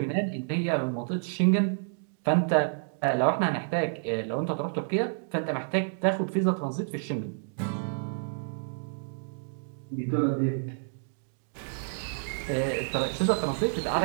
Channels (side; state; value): left; silent; digital silence